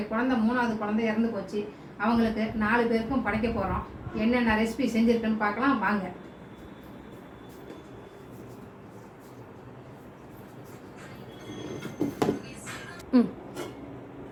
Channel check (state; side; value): identical; both; correlation 1.00